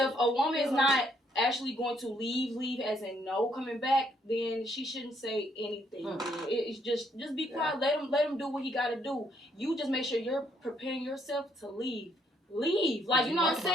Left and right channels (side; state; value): both; normal; correlation 0.70